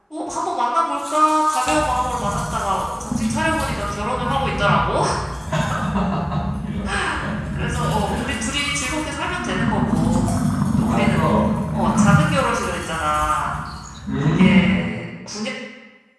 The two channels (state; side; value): identical; both; correlation 1.00